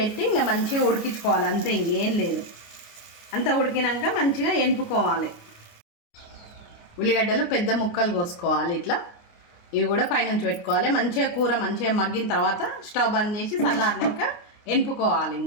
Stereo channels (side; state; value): right; late; 29 ms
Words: ఇంకా మంచిగా ఉడికించుకోవాలి, అంతే, ఇంకేం లేదు. అంతా ఉడికినాక మంచిగా ఎనుపుకోవాలి. ఉల్లిగడ్డలు పెద్ద ముక్కలు కోసుకోవాలి ఇట్లా. ఇవి కూడా పైనుంచి పెట్టుకోవాలి. మంచిగా కూర మంచిగా మగ్గిన తర్వాత స్టవ్ బంద్ చేసి చల్లారినాక ఎనుపుకోవాలి.